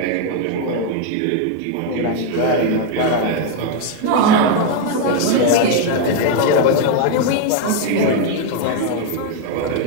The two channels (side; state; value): both; different; correlation 0.01